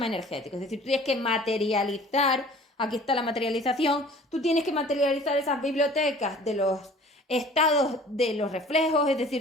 energético. Es decir, tú tienes que materializar, aquí está la materialización, tú tienes que materializar esas bibliotecas de los estados de los reflejos, es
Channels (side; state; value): both; normal; correlation 0.48